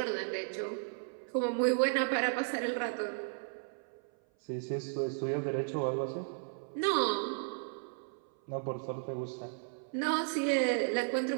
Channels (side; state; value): left; silent; 55 dB below the other